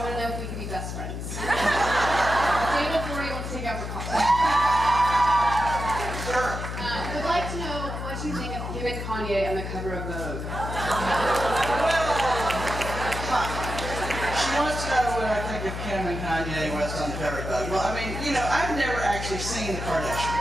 want to know if we can be best friends. Day before you want to take out for coffee. Sure. I'd like to know what you think of Kim and Kanye on the cover of Vogue. She wants to know what I think of Kim and Kanye West on the cover of Vogue. Well, I mean, you know, I've never actually seen the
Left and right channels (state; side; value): noise; left; hum, 6 dB below the sound